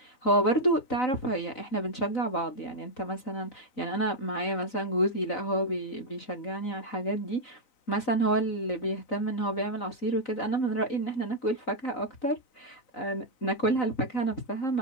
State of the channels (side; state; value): right; late; 3.9 ms